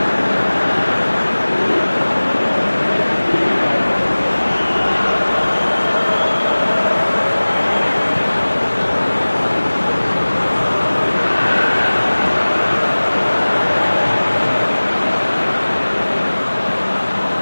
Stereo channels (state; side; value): inverted; both; correlation -1.00